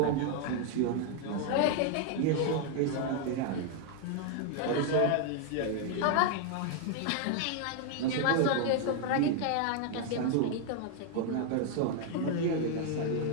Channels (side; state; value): both; different; correlation 0.00